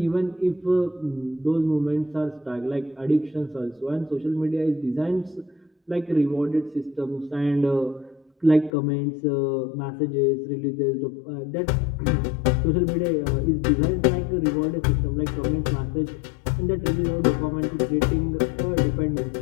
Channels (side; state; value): right; drops out; at 8.7 s